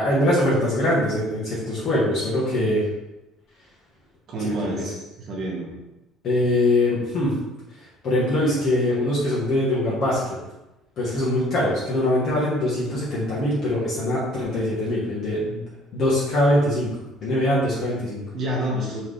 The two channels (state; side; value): normal; both; correlation 0.55